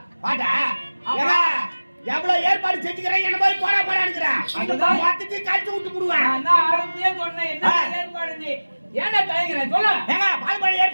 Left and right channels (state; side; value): inverted; both; correlation -1.00